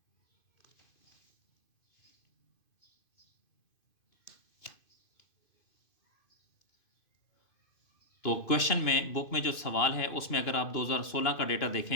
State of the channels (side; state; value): right; late; 2.5 ms